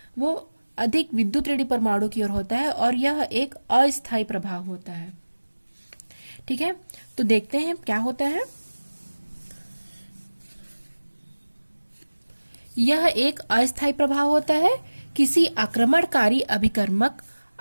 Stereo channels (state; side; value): inverted; both; correlation -1.00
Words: वो अधिक विद्युत ऋणात्मक परमाणु की ओर होता है और यह एक अस्थायी प्रभाव होता है। ठीक है, तो देखते हैं क्या होता है। यह एक अस्थायी प्रभाव होता है। किसी आक्रमणकारी अभिकर्मक